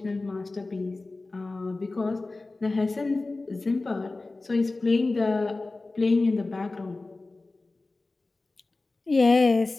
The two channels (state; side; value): quieter; right; 3.3 dB